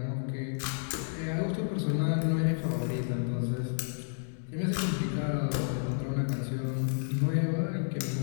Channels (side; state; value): right; silent; digital silence